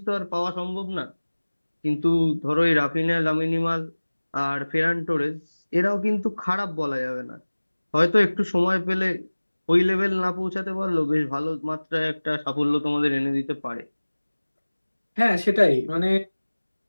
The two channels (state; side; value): inverted; both; correlation -1.00